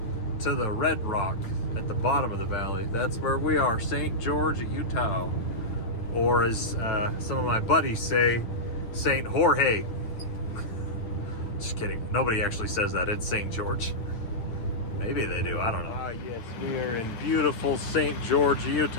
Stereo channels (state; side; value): late; right; 9.1 ms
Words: to the red rock at the bottom of the valley. That's where we are, St. George, Utah. Or as some of my buddies say, St. Jorge. Just kidding. Nobody actually says that. It's St. George. Maybe they do. I don't know. Ah, yes. We are in beautiful St. George,